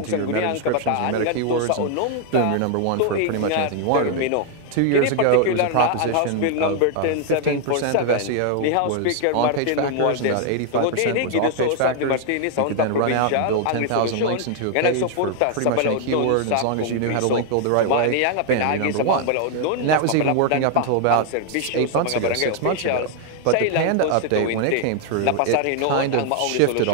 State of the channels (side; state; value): both; different; correlation 0.00